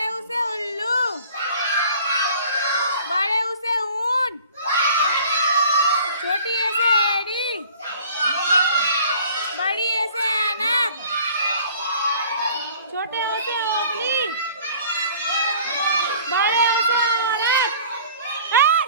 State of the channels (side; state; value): both; inverted; correlation -0.50